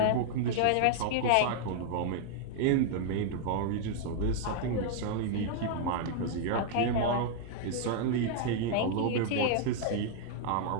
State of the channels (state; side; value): different; both; correlation -0.01